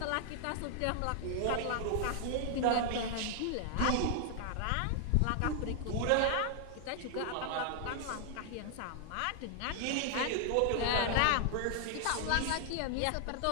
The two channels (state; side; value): different; both; correlation 0.00